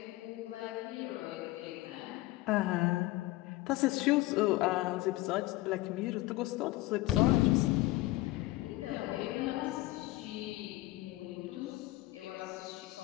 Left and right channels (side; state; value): right; quieter; 18.4 dB